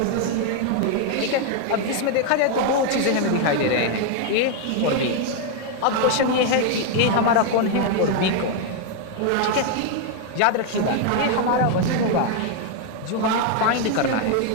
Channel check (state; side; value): different; both; correlation 0.00